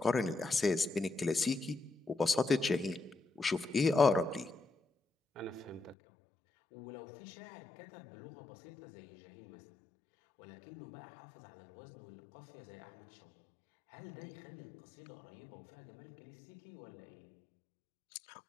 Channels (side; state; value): right; drops out; at 6.0 s